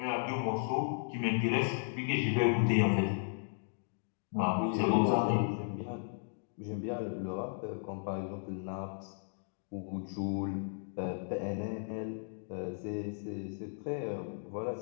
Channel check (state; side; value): silent; right; digital silence